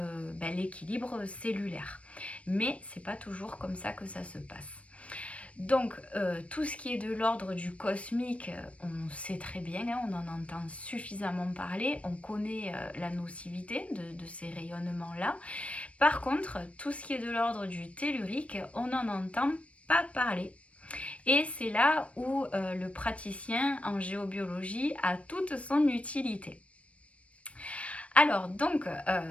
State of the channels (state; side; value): late; right; 0.063 ms